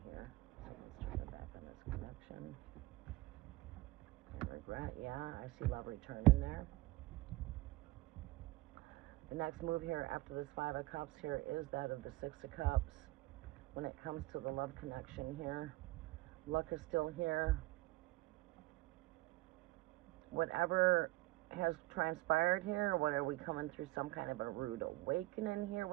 here? So let's turn it back on this connection. And regret, yeah, I see love returning there. The next move here after this Five of Cups here is that of the Six of Cups. When it comes to the love connection here, luck is still here. Whatever has transpired here, what are we coming through some kind of a rude awakening here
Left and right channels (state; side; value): quieter; left; 19.6 dB